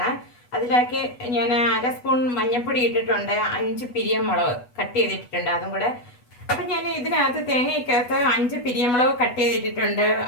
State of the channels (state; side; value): late; right; 8.2 ms